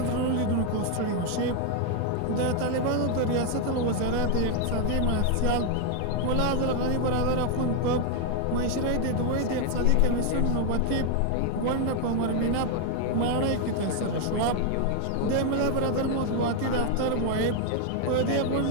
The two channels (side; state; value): both; different; correlation 0.00